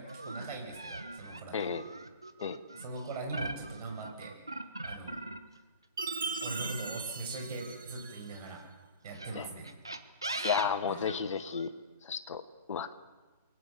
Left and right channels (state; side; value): inverted; both; correlation -0.37